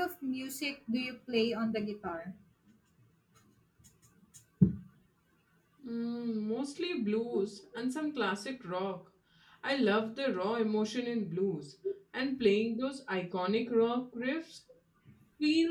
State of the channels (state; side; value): identical; both; correlation 1.00